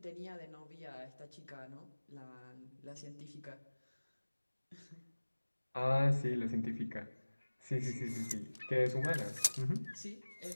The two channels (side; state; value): both; inverted; correlation -1.00